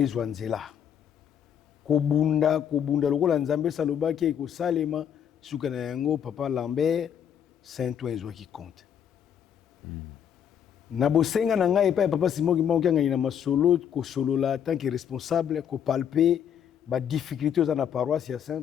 nzela kobunda lokola nzambe salobaki ekosalema suka na yango papa Lambert Saint-Ouen ezwaki compte. Na bosenga na ngai pa ya papa Simo Kimbangu Kiangani na masolo kosolola tant que responsable kopalpe ba difficulté oza na paroisse ya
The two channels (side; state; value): right; quieter; 8.7 dB